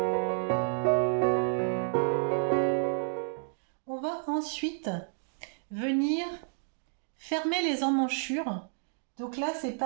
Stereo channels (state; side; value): silent; left; digital silence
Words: On va ensuite venir fermer les emmanchures. Donc là c'est